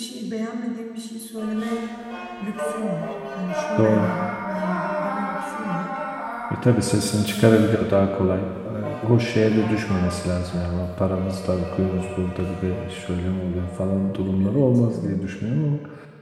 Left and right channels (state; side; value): identical; both; correlation 1.00